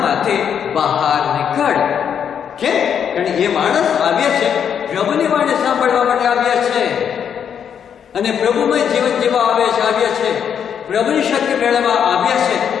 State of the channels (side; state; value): right; quieter; 8.1 dB